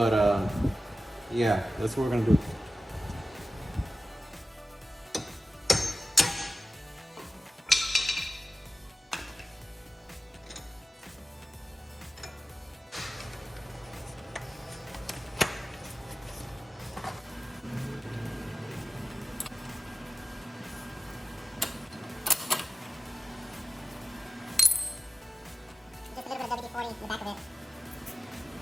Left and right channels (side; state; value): both; normal; correlation 0.94